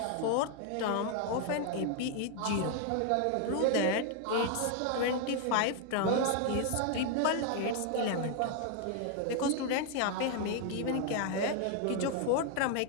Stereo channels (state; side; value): different; both; correlation 0.00